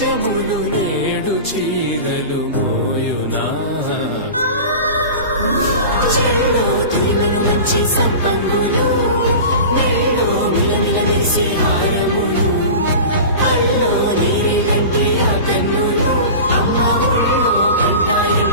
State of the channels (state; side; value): inverted; both; correlation -0.33